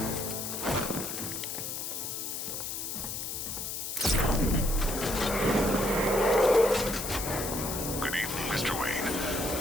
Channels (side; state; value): left; noise; hiss, 4 dB below the sound